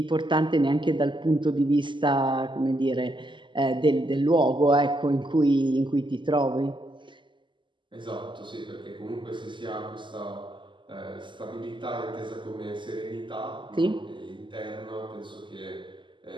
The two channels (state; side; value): late; left; 0.24 ms